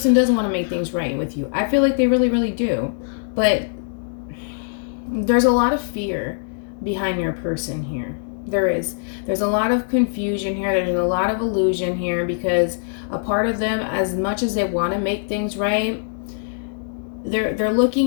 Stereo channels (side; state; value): right; silent; digital silence